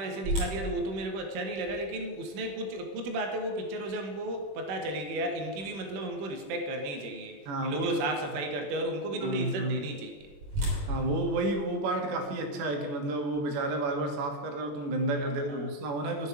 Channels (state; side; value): late; left; 20 ms